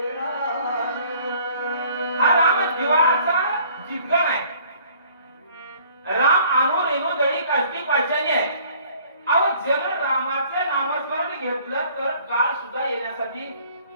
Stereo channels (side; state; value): both; inverted; correlation -0.56